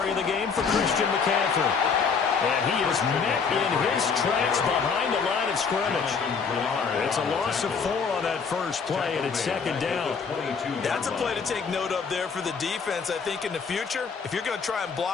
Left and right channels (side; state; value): right; quieter; 5.7 dB